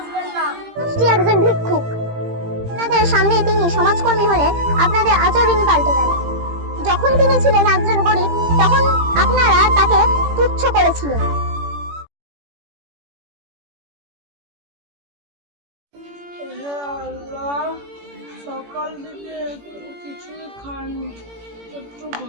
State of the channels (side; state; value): left; late; 18 ms